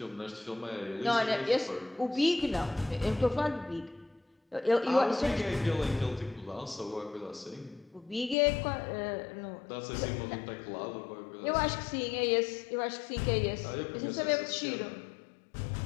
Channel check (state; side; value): drops out; right; at 8.3 s